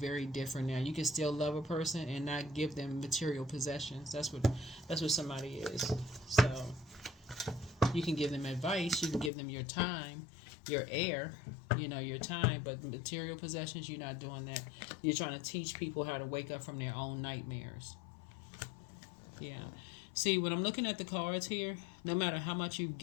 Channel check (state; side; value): drops out; right; at 9.3 s